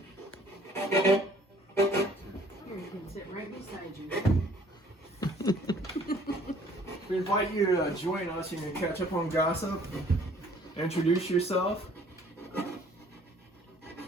you can sit right beside you. We invite you to join us. You can catch up on gossip, introduce yourself.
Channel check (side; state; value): both; normal; correlation 0.57